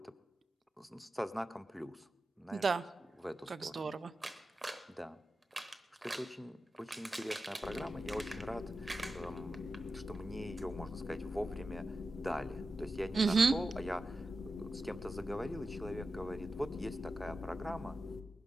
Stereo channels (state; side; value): normal; both; correlation 0.91